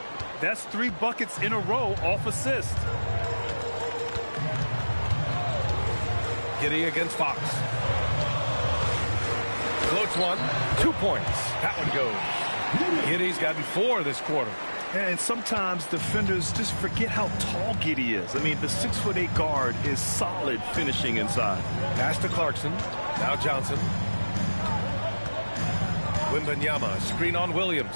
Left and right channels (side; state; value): both; inverted; correlation -1.00